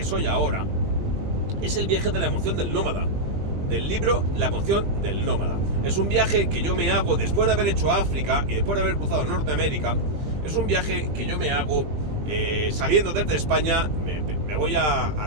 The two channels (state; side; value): late; left; 20 ms